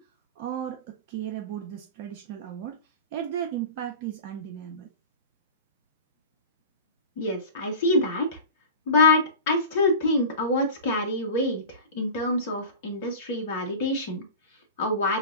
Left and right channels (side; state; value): both; inverted; correlation -0.33